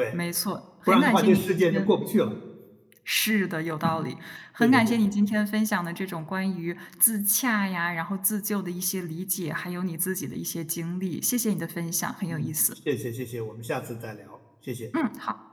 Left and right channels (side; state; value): both; identical; correlation 1.00